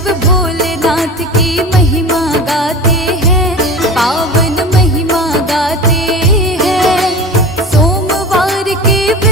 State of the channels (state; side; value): normal; both; correlation 0.33